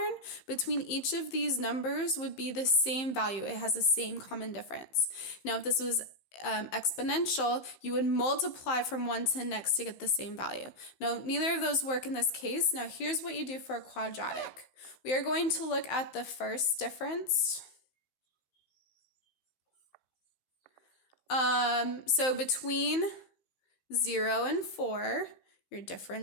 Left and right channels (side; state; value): right; late; 15 ms